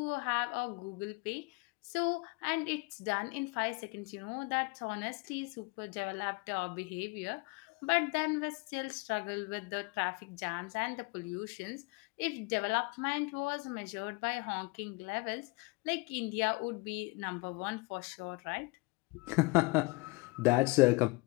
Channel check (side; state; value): right; quieter; 26.5 dB